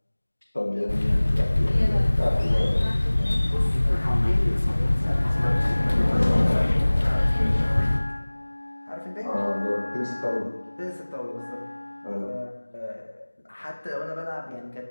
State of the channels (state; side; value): inverted; both; correlation -1.00